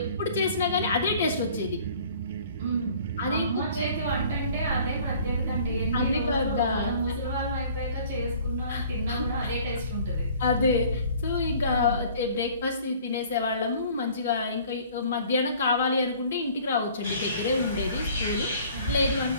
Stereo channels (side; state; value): both; inverted; correlation -0.52